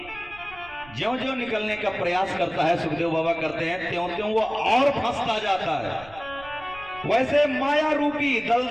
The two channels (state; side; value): noise; right; rumble, 21 dB below the sound